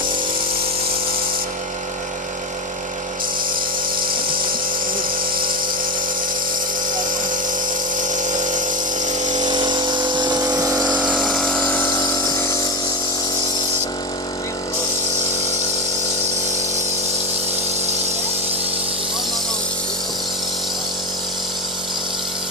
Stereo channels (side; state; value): both; normal; correlation 0.18